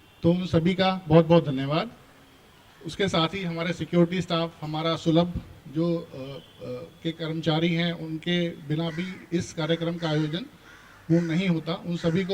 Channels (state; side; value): identical; both; correlation 1.00